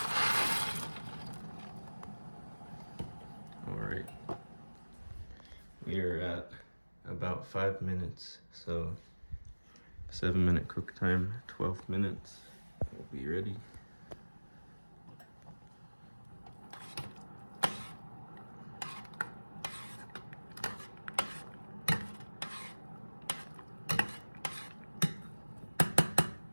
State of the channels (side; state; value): both; inverted; correlation -1.00